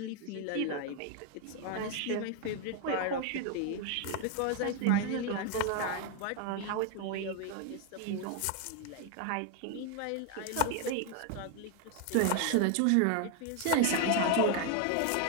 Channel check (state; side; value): different; both; correlation 0.01